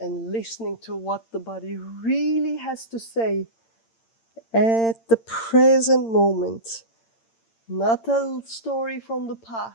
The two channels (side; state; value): right; late; 8.8 ms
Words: listening to what the body really has to say at the present moment. Not a story from the